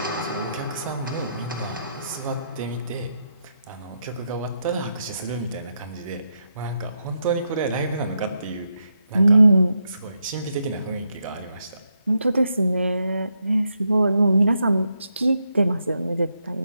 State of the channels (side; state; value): both; inverted; correlation -0.82